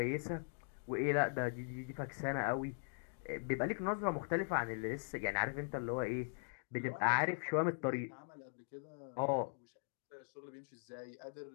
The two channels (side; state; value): right; silent; digital silence